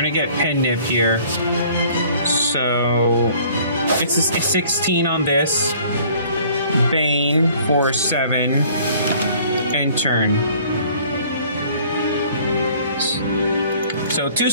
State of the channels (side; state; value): both; inverted; correlation -0.55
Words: get Pen Nib here. So, it's a 16 on this. Bane for 7. And turn. So 2